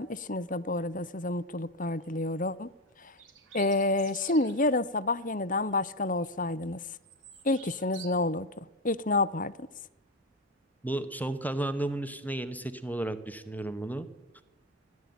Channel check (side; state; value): both; normal; correlation 0.14